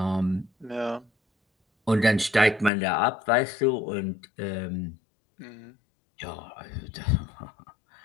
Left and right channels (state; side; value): drops out; right; at 2.7 s